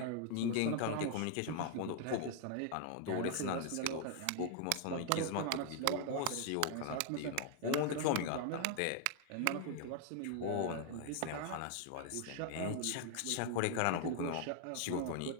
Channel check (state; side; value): different; both; correlation 0.00